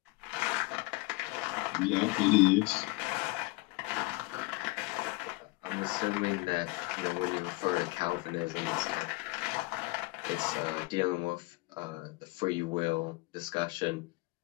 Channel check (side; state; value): right; quieter; 23.4 dB